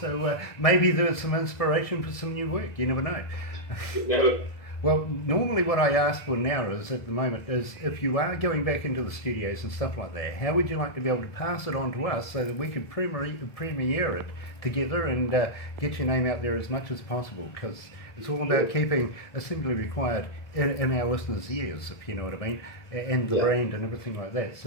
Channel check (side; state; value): right; late; 1.7 ms